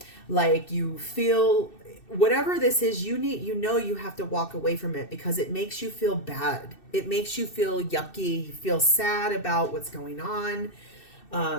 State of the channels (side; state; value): right; late; 2.7 ms